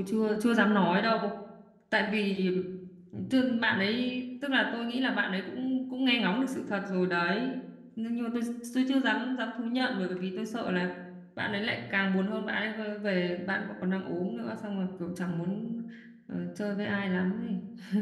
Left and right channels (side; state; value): both; identical; correlation 1.00